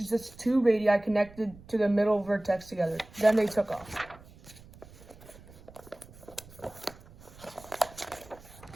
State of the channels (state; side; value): noise; right; rumble, 21 dB below the sound